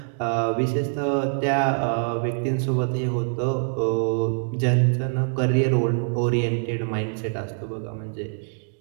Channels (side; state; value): left; silent; digital silence